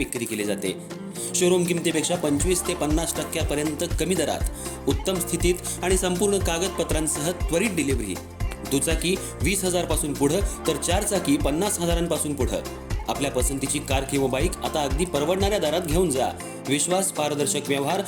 केली जाते. शोरूम किमतीपेक्षा 25 ते 50% कमी दरात, उत्तम स्थितीत आणि संपूर्ण कागदपत्रांसह त्वरित डिलिव्हरी. दुचाकी 20,000 पासून पुढे तर चारचाकी 50,000 पुढे. आपल्या पसंतीची कार किंवा बाईक आता अगदी परवडणाऱ्या दरात घेऊन जा. विश्वास, पारदर्शक व्यवहार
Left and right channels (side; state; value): both; identical; correlation 1.00